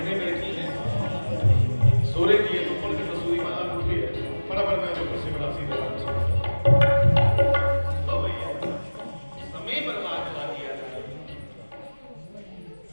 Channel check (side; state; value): both; inverted; correlation -1.00